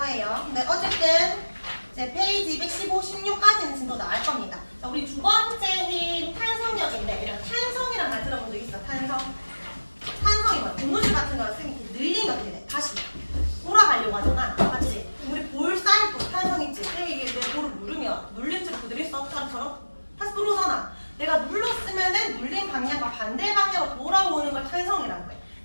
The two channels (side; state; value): both; inverted; correlation -1.00